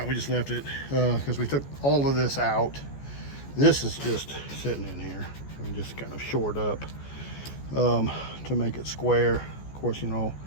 we just left it because we took all of this out. This is just sitting in here and just kind of shored up to make it square. Of course,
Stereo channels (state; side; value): late; right; 14 ms